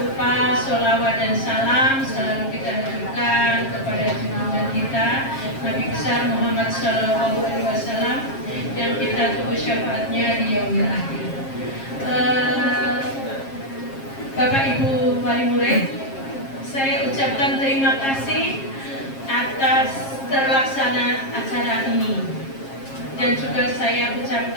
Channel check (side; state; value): right; late; 7.4 ms